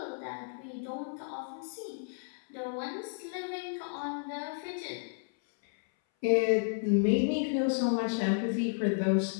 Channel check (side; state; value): right; silent; 56 dB below the other